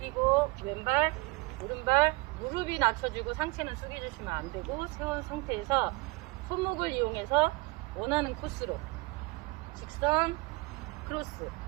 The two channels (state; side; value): quieter; left; 24.0 dB